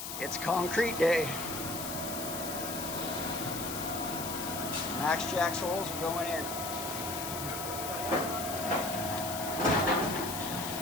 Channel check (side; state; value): left; noise; hiss, 6 dB below the sound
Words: It's concrete day. MaxJax holes are going in.